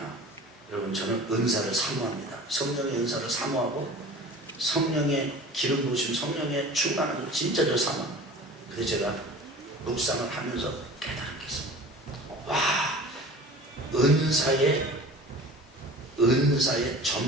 여러분, 저는 은사를 사모합니다. 성령의 은사를 사모하고 성령의 기름 부으심, 성령의 충만함을 진짜 저 사모합니다. 그래서 제가 묵상을 하면서 깨달은 게 있습니다. 와, 은사의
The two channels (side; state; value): both; normal; correlation 0.40